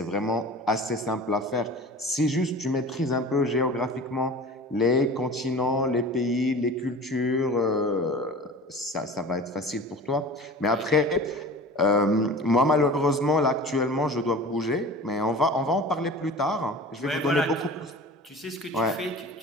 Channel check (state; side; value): normal; both; correlation 0.38